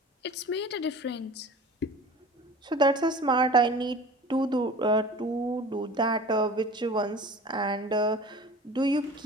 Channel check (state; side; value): normal; both; correlation 0.41